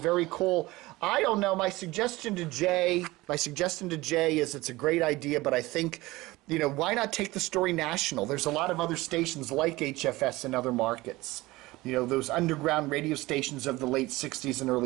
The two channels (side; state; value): left; quieter; 19.9 dB